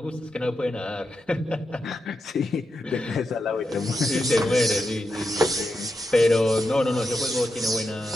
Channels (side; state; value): both; normal; correlation 0.87